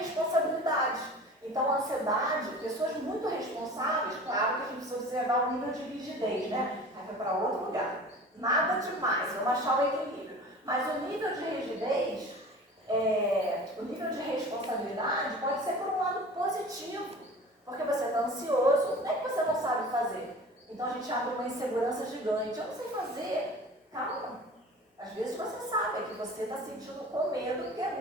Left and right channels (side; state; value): both; normal; correlation 0.40